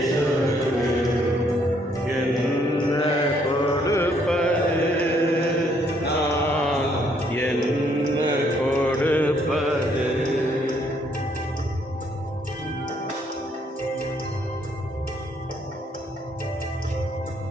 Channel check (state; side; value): normal; both; correlation 0.68